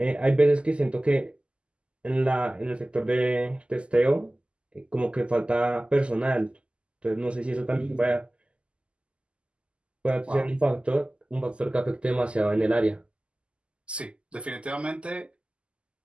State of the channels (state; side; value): late; left; 0.053 ms